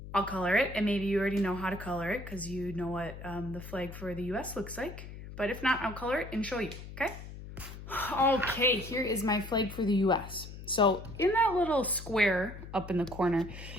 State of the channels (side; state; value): left; noise; hum, 12 dB below the sound